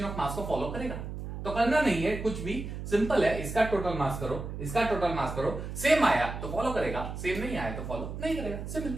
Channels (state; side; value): noise; right; hum, 7 dB below the sound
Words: of mass को फॉलो करेगा। तो करना नहीं है कुछ भी, सिंपल है, इसका टोटल मास करो, इसका टोटल मास करो, सेम आया तो फॉलो करेगा, सेम नहीं आया तो फॉलो नहीं करेगा, सिंपल।